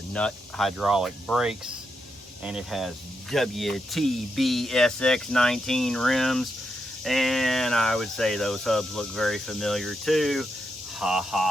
nut hydraulic brakes, and it has WTB SX19 rims, and I would say those hubs look very familiar too. Ha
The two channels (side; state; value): both; normal; correlation 0.83